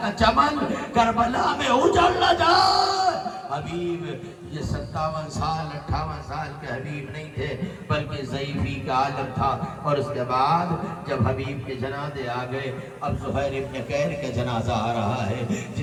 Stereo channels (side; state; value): both; identical; correlation 1.00